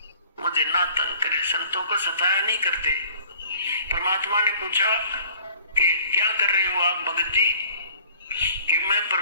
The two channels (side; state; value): both; inverted; correlation -0.53